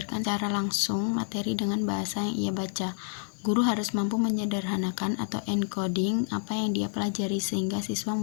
secara langsung materi dengan bahasa yang ia baca. Guru harus mampu menyederhanakan atau encoding apa yang dia pelajari sehingga siswa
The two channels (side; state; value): right; silent; digital silence